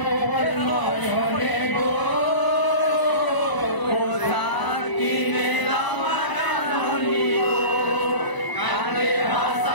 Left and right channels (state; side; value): late; right; 1.0 ms